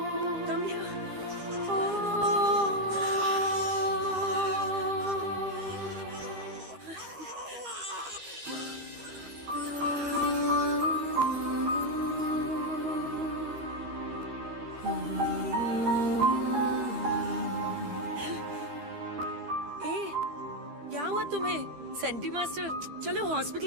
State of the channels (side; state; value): left; late; 13 ms